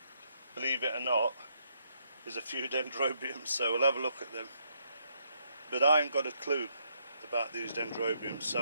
believe it or not, is a few dendrobiums, so we'll have a look at them. But I ain't got a clue about these dendrobiums,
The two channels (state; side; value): inverted; both; correlation -0.74